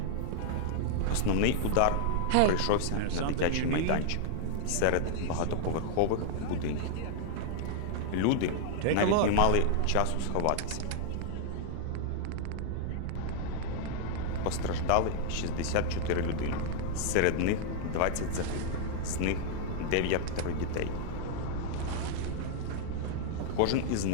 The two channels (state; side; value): different; both; correlation 0.00